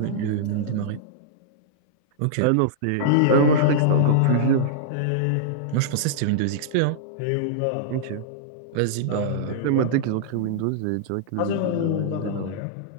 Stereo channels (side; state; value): both; different; correlation -0.02